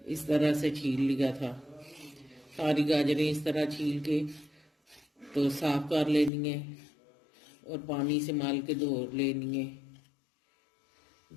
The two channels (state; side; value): drops out; right; at 6.3 s